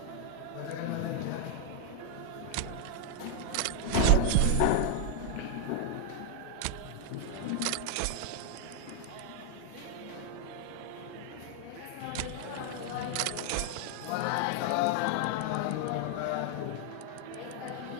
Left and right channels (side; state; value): both; different; correlation 0.00